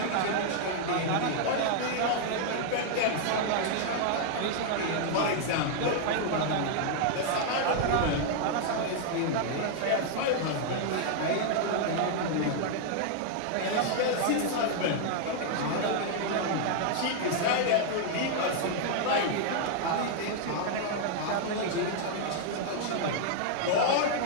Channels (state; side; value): different; both; correlation 0.00